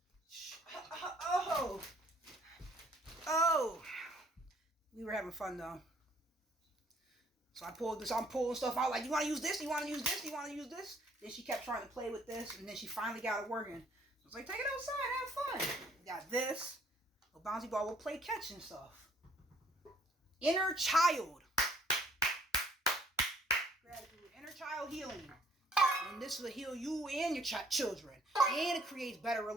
We were having fun, though. So I pulled this. I'm pulling stuff out. Like, you want to use this? You want to use this? You want to use this? Then she kept trying to play with this, and then she finally got it working. I was like, take it outside. Have fun. We got this. A bouncy ball. We'll play catch and stuff. Inner child. Gratitude, inner child healing, and this will heal you and your children, and it creates better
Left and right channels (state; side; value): normal; both; correlation 0.62